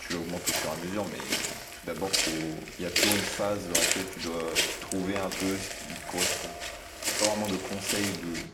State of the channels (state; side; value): identical; both; correlation 1.00